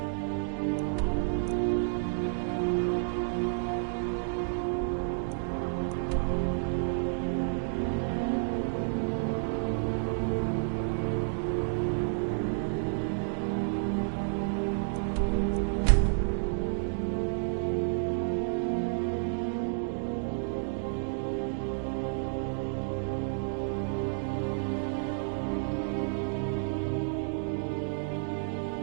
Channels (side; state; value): left; silent; digital silence